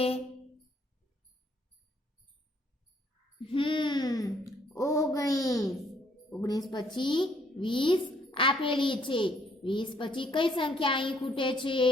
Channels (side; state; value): both; normal; correlation 0.66